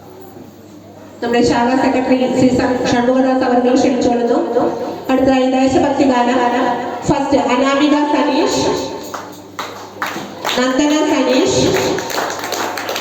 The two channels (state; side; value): identical; both; correlation 1.00